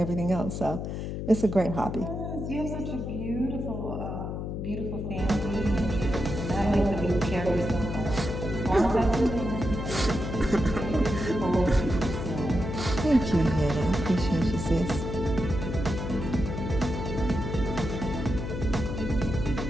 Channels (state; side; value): noise; left; hum, 5 dB below the sound